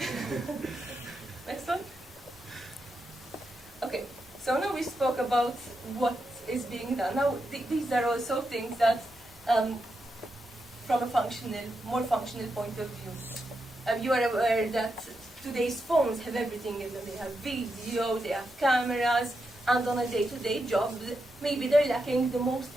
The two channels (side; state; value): both; normal; correlation 0.86